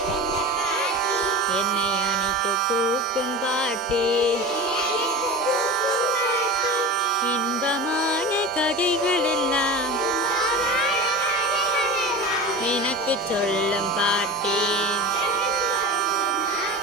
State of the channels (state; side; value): normal; both; correlation 0.31